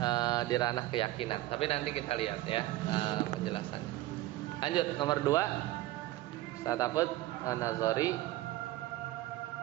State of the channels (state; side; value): quieter; left; 16.6 dB